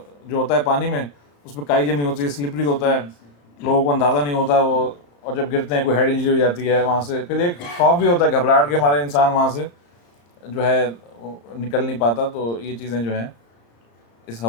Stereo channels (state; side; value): late; right; 35 ms